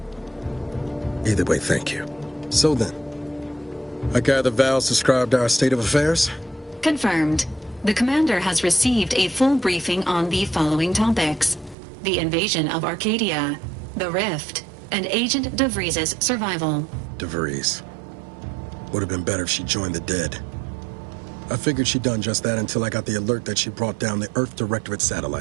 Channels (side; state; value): left; drops out; at 11.8 s